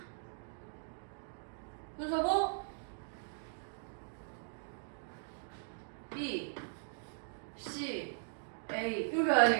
순서고 B, C, A 이렇게 가야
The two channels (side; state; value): left; silent; digital silence